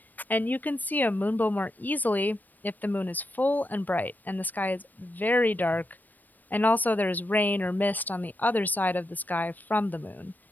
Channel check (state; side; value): late; right; 0.086 ms